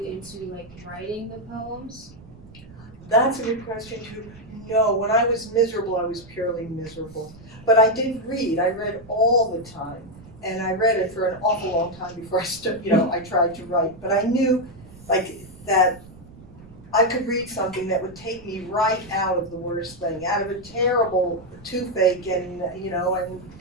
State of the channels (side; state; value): right; noise; rumble, 21 dB below the sound